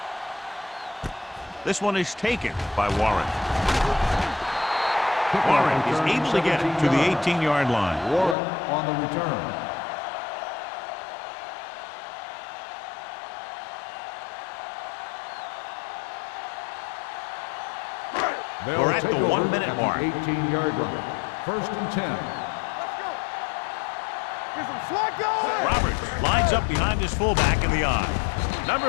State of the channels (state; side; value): drops out; right; at 8.3 s